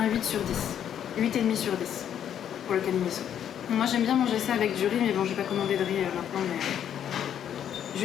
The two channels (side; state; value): right; quieter; 9.6 dB